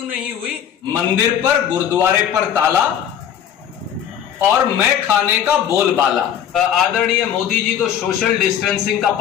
नहीं हुई। मंदिर पर, गुरुद्वारे पर ताला और मैं खाने का बोलबाला। आदरणीय मोदी जी तो सोशल डिस्टेंसिंग का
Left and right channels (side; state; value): right; quieter; 9.4 dB